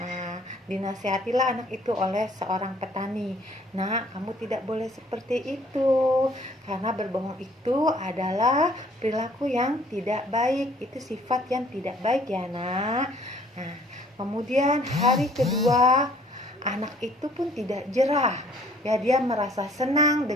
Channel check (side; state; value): both; normal; correlation 0.58